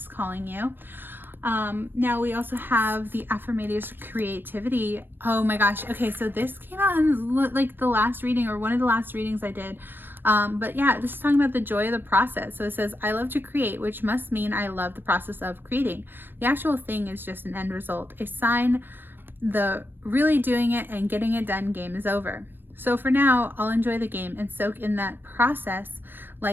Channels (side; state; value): left; late; 0.096 ms